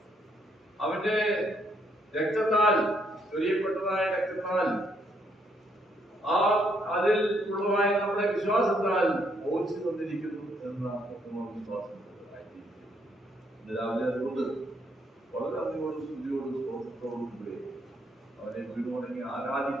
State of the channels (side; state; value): both; normal; correlation 0.72